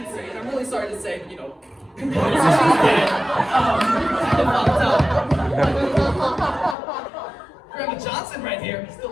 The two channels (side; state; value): right; drops out; at 6.8 s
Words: and I'm really sorry to say, she's dead. Grandma Johnson right here,